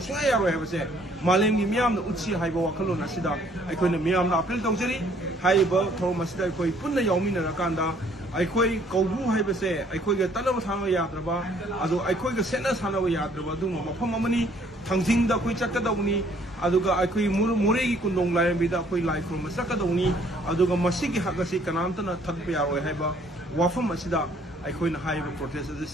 I have said, Malam Miam, the Utsi, Haiba Wakalon Asida, I couldn't Miam, April Tongeri, Hairiba, Thouram Asida, Koi Puna Yamina Rakanda, I koi Koubru have say, I koi get Tanama Yadraba, Adu I koi Senas Hanawa Yadraba, Duma, Pamani, Tangting the Kuchakadoni. Aduga Akui Murigi Kundong Lion Bida Koi like from Masakadoni, Aduga Masiki Hakasi Kanantana Takpia or Heba, Wafam Asida, Akoin High protest the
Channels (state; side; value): normal; both; correlation 0.62